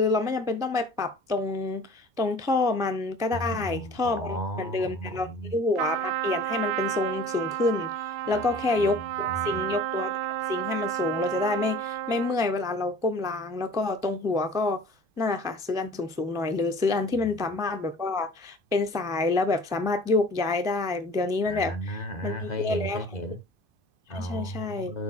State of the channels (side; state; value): left; late; 2.5 ms